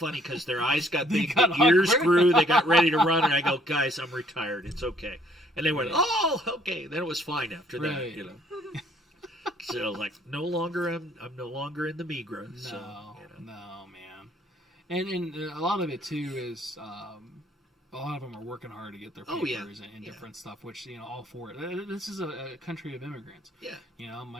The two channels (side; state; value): both; normal; correlation 0.63